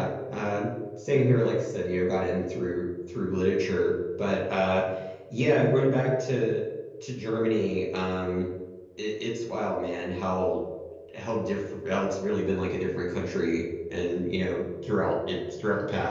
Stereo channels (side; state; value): both; identical; correlation 1.00